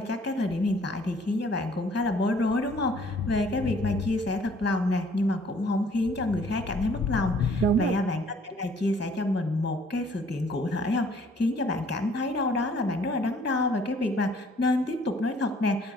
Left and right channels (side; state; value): both; normal; correlation 0.59